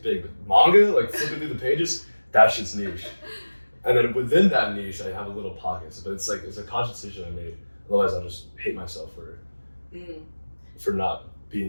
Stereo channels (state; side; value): inverted; both; correlation -1.00